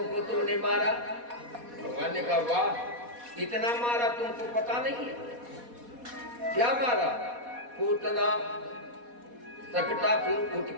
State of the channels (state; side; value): late; left; 4.2 ms